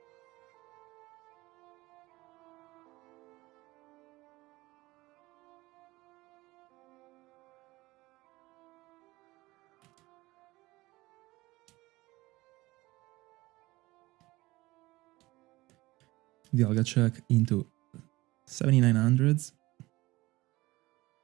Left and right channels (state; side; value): quieter; left; 19.9 dB